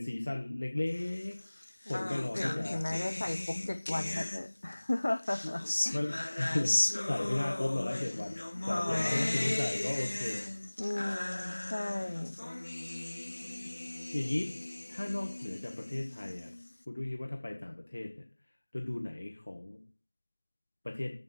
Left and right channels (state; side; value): inverted; both; correlation -1.00